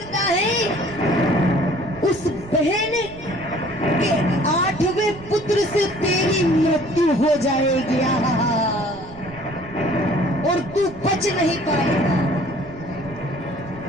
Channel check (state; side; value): noise; right; rumble, 18 dB below the sound